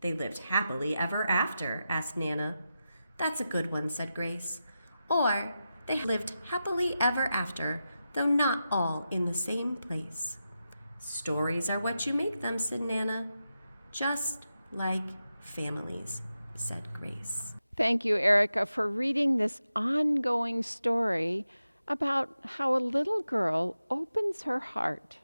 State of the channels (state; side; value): inverted; both; correlation -0.90